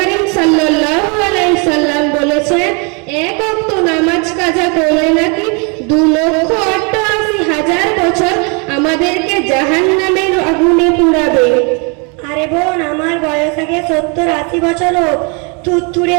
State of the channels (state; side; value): quieter; left; 33.7 dB